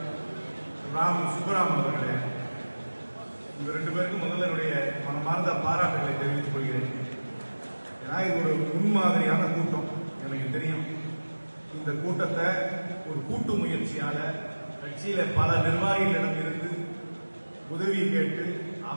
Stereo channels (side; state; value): both; inverted; correlation -1.00